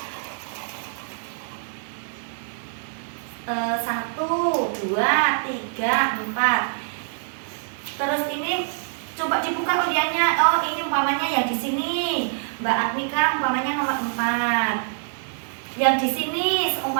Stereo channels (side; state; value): left; silent; digital silence